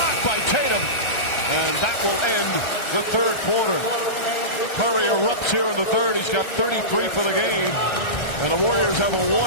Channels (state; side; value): late; right; 1.3 ms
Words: by Tatum. And that will end the third quarter. Curry erupts here in the third. He's got 33 for the game. And the Warriors have a